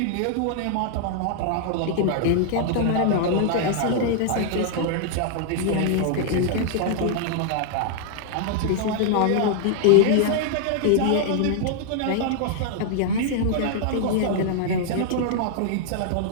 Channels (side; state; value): both; different; correlation -0.01